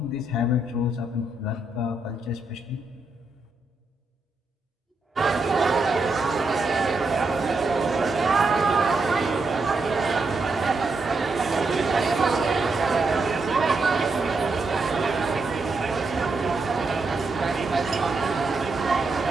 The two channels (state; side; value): quieter; left; 3.2 dB